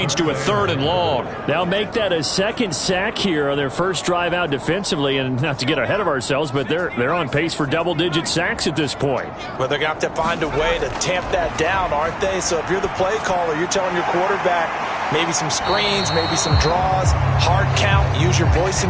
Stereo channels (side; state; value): both; identical; correlation 1.00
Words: to a 3rd and long. Now make that a 2nd sack here on their first drive out defensively. And not to get ahead of ourselves, but they're on pace for double-digit sacks at this point. Well, they're going to have to find a way to tamp that down, aren't they? So if you're the play caller, you're telling your quarterback maybe some screens, maybe some draws, hard count, use your voice